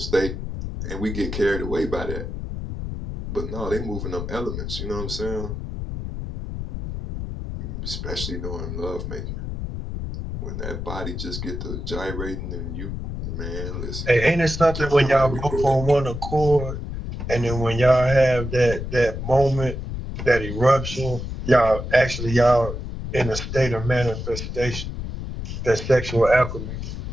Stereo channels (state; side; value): noise; left; rumble, 6 dB below the sound